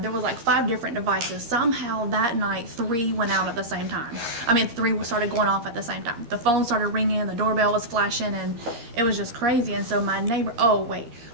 there was like 5 different devices. Somehow that night, 3 went out at the same time. 3 started going off at the same time. The phone started ringing, the doorbell was flashing, and it was just crazy. And so my neighbor,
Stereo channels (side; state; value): left; late; 13 ms